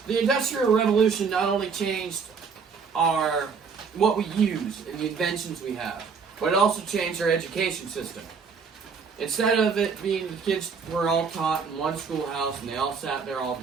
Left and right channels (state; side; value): quieter; left; 5.7 dB